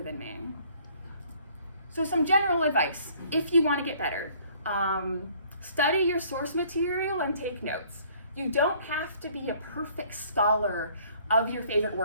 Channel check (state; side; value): inverted; both; correlation -0.58